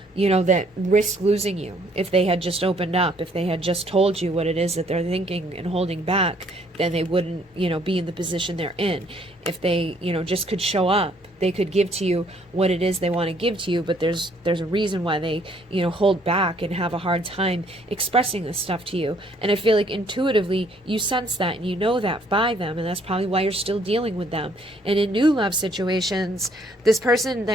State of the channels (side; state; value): both; normal; correlation 0.64